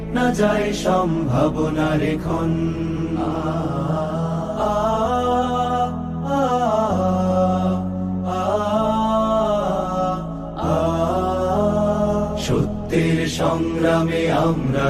না যায় সম্ভাবনার ক্ষণ। সত্যের সংগ্রামে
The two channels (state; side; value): identical; both; correlation 1.00